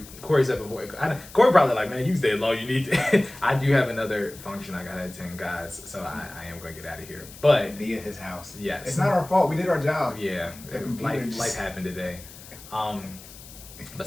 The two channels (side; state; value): left; noise; hiss, 18 dB below the sound